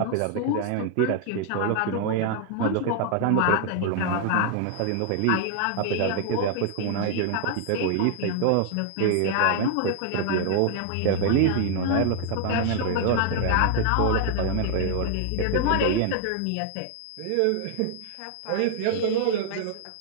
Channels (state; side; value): different; both; correlation 0.00